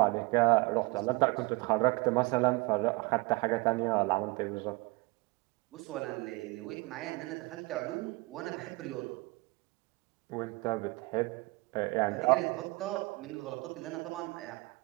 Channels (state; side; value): quieter; left; 24.1 dB